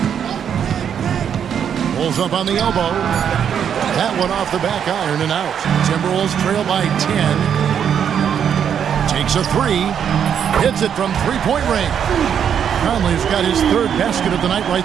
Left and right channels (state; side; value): quieter; left; 8.3 dB